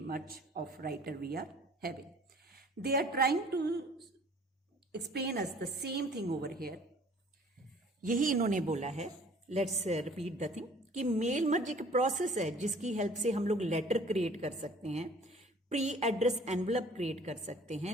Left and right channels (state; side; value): normal; both; correlation 0.52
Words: merge of writer we are having. They are trying to explain us the same thing over here. यही इन्होंने बोला है, लेट्स रिपीट द थिंग, कि mail मर्ज एक process है जिसकी help से हम लोग लेटर क्रिएट कर सकते हैं, प्री एड्रेस एनवलप क्रिएट कर सकते हैं,